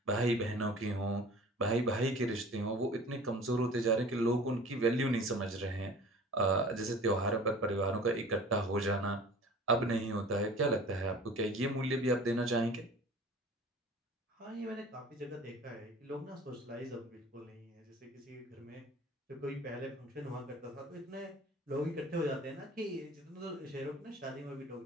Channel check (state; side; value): normal; both; correlation 0.44